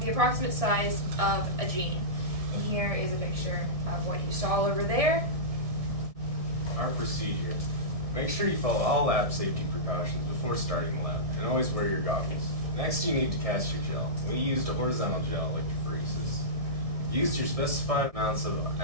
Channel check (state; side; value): late; left; 1.7 ms